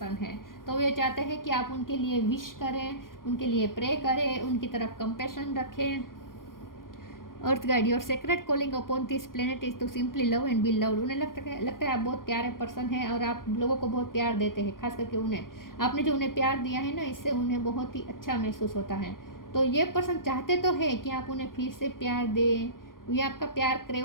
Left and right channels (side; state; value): right; late; 0.91 ms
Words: हैं। तो वे चाहते हैं कि आप उनके लिए विश करें, उनके लिए प्रे करें, उनकी तरफ कंपैशन रखें। Earth guide, your sacred calling upon this planet is to simply love and be loved. उन्हें लगता है आप बहुत प्यारे पर्सन हैं और आप लोगों को बहुत प्यार देते हैं, खास करके उन्हें, आपने जो उन्हें प्यार दिया है ना, इससे उन्हें बहुत ही अच्छा महसूस होता है। तो ये पर्सन चाहते तो है कि आप उन्हें फिर से प्यार दें, ये आपका प्यार